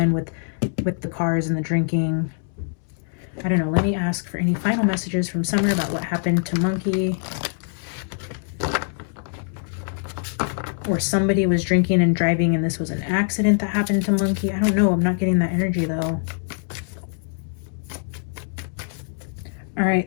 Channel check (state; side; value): silent; right; 63 dB below the other